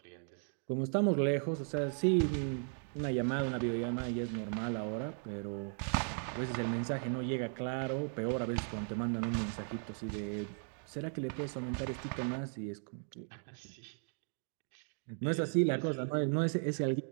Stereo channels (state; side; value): silent; left; 53 dB below the other